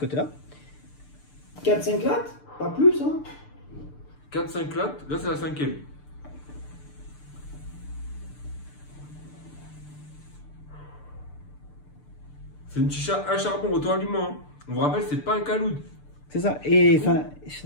4-5 lattes, pas plus. Hein. 4-5 lattes, là c'est la cinquième. C'est une chicha à charbon auto-allumant. Hein. On vous rappelle, c'est pas un caloud. C'est ça. Et enfin,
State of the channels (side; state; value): right; late; 6.8 ms